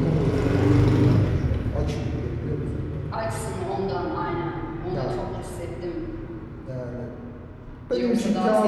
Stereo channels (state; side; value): identical; both; correlation 1.00